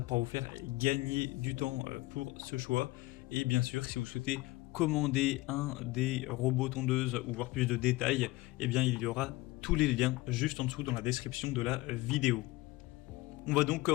pouvoir vous faire gagner du temps pour ce choix. Et bien sûr, si vous souhaitez commander un des robots tondeuses ou voir plus de détails, eh bien il y aura tous les liens juste en dessous dans la description de la vidéo. On va donc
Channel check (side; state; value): right; quieter; 20.1 dB